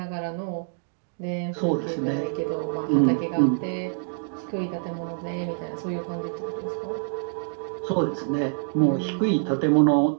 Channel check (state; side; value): silent; left; digital silence